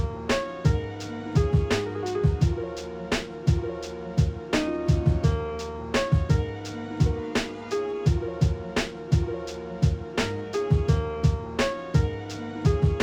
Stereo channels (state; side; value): identical; both; correlation 1.00